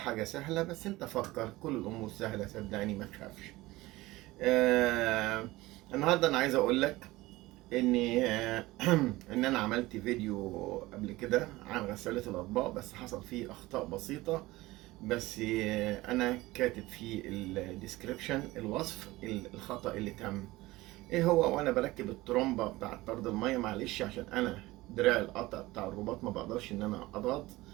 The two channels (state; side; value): quieter; left; 19.2 dB